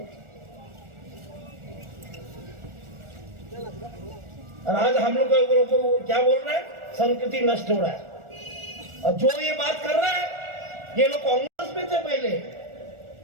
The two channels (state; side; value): late; left; 1.4 ms